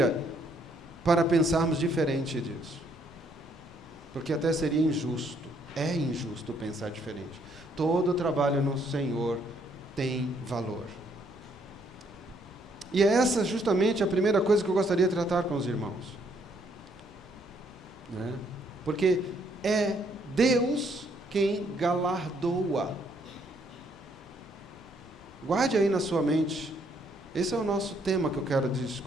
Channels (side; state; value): both; normal; correlation 0.69